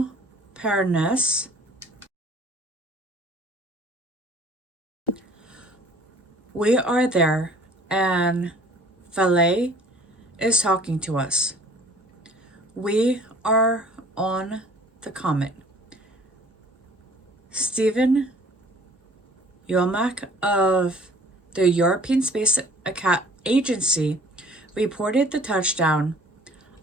Pernes. We are there, and Valet is talking to us. We are on the comet. Stephen Yomak of the European Space Agency reported the touchdown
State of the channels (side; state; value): both; normal; correlation 0.52